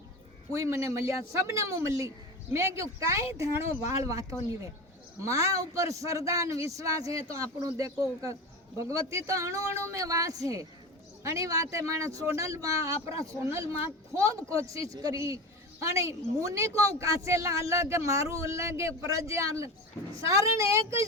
कोई मने मलिया सबने मुँह मली मैं क्यों कई धाणो वाल वातो नहीं वे माँ ऊपर श्रद्धा विश्वास है तो आपणो देखो भगवती तो अणु अणु में वास है अणी वाते माने सोनल माँ आपरा सोनल माँ खूब कोशिश करी अणी मुनि को कासेला अलग मारू अलग प्रजा अलग सारण एक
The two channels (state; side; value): normal; both; correlation 0.26